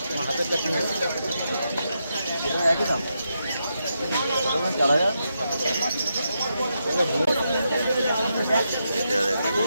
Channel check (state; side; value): inverted; both; correlation -0.84